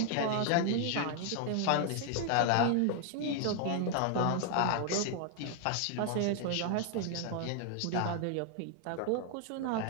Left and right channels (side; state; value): both; different; correlation 0.00